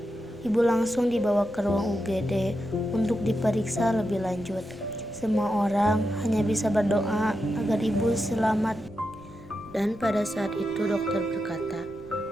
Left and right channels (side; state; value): left; noise; rumble, 22 dB below the sound